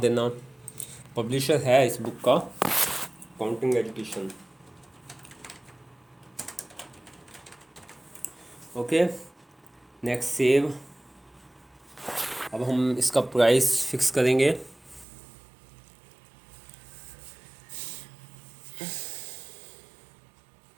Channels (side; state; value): left; drops out; at 15.1 s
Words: पब्लिशर है इस बुक का counting education. Okay, next save. अब हम इसका प्राइस फिक्स करेंगे।